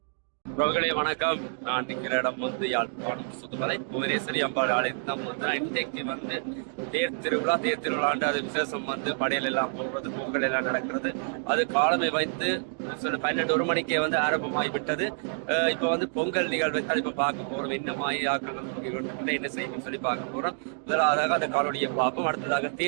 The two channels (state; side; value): silent; left; 59 dB below the other